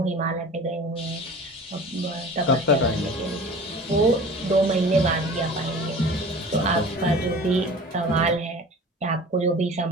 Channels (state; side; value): normal; both; correlation 0.41